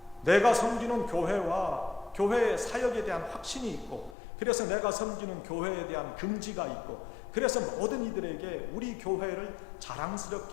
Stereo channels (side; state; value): right; drops out; at 4.2 s